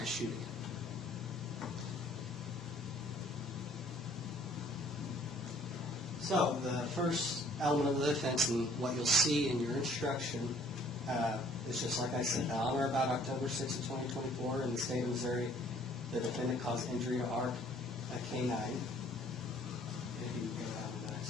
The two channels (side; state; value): both; normal; correlation 0.57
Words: shooting it. So the first element of the offense, and what you'll see in your instruction, is just like I said, on or about October 6th of 2024 in the state of Missouri, the defendant caused injury to Ark, a canine.